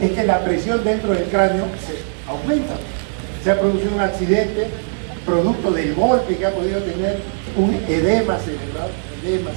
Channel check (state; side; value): silent; left; digital silence